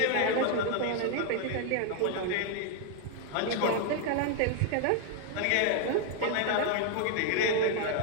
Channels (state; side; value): different; both; correlation 0.00